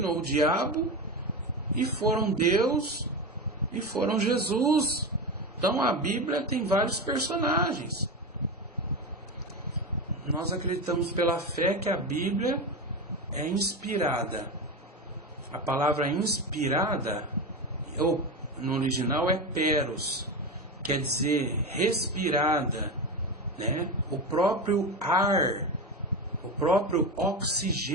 ou diabo e foram Deus e foram Jesus. Então a Bíblia tem vários personagens. Nós acreditamos pela fé que a Bíblia é inspirada. A palavra inspirada, ou no original é peros, quer dizer respirada, né? O próprio ar, o próprio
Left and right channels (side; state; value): both; normal; correlation 0.20